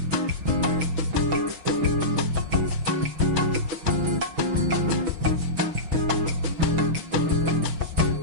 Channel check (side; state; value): left; late; 6.2 ms